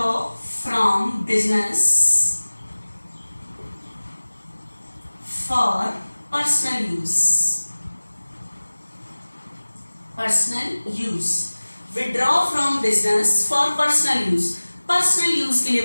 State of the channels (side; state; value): both; inverted; correlation -1.00